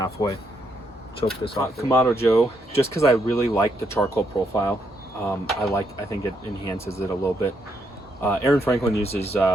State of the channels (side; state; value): both; normal; correlation 0.77